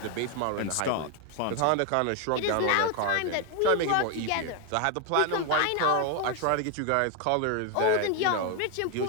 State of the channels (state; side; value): different; both; correlation 0.01